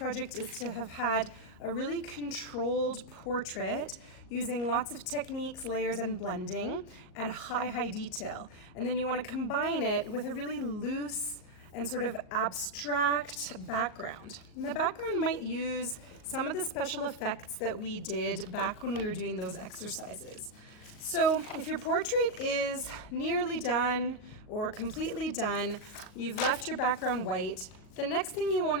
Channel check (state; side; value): late; right; 38 ms